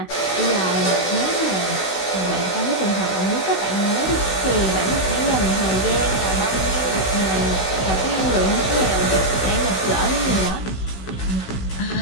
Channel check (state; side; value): late; right; 16 ms